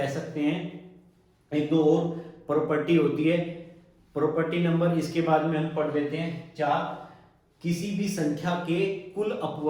सकते हैं, एक दो और प्रॉपर्टी होती है। प्रॉपर्टी नंबर इसके बाद में हम पढ़ लेते हैं 4। किसी भी संख्या के कुल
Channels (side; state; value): both; identical; correlation 1.00